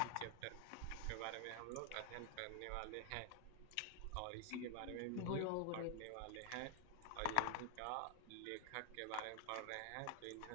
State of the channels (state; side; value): different; both; correlation 0.00